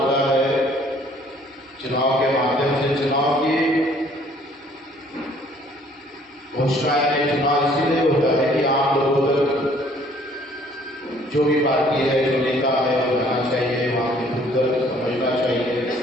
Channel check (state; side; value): normal; both; correlation 0.59